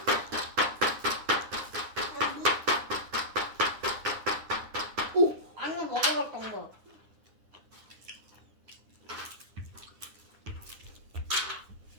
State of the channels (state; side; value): late; left; 9.8 ms